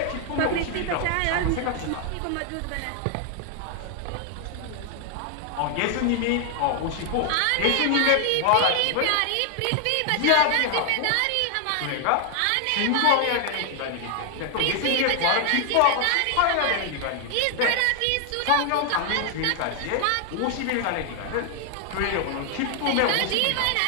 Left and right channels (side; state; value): both; different; correlation 0.00